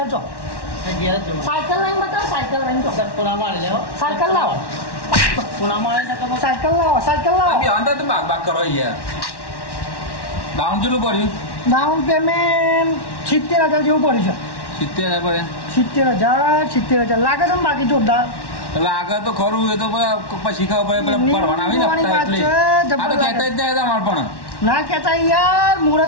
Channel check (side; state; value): right; late; 1.1 ms